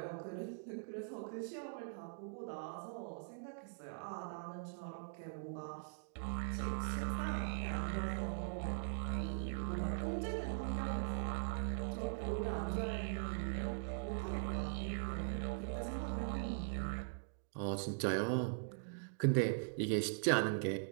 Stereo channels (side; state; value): left; silent; digital silence